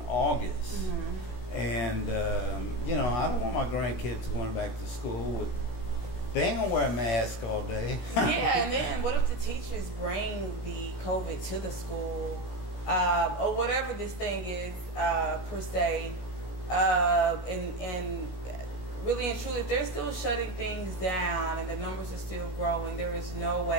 August. And, you know, I don't want my grandkids going back to school. They ain't going to wear a mask all day. Yeah, and then what if the teachers bring the COVID to the school? Or whatever this thing is, per se. And really and truly, if they're still shutting things down and the numbers are still growing, there is no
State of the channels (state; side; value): late; right; 16 ms